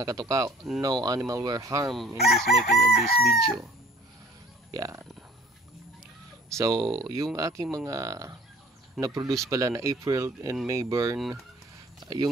katuka, no animal were harmed in this making of this video. Yan. So, yung aking mga na-produce pala na April and May burn,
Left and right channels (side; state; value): both; normal; correlation 0.52